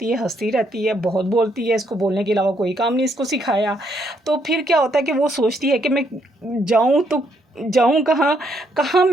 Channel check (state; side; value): normal; both; correlation 0.73